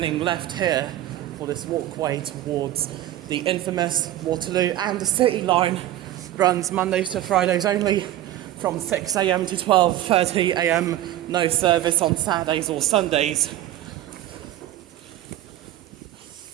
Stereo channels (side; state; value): left; quieter; 13.6 dB